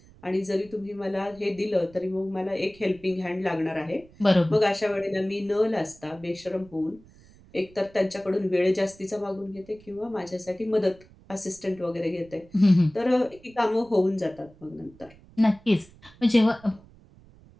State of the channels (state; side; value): noise; right; rumble, 25 dB below the sound